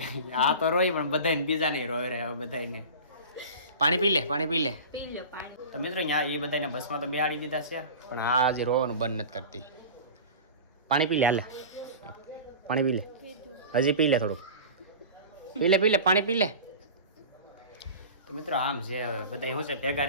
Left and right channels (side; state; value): both; inverted; correlation -0.34